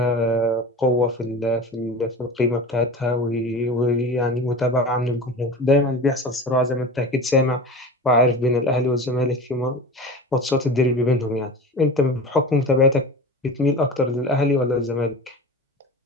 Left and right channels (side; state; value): both; normal; correlation 0.32